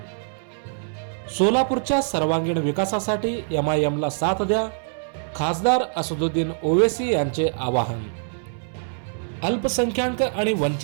सोलापूरच्या सर्वांगीण विकासासाठी MIMला साथ द्या, खासदार असदुद्दीन ओवैसी यांचे आवाहन. अल्पसंख्याक आणि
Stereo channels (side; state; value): left; silent; 63 dB below the other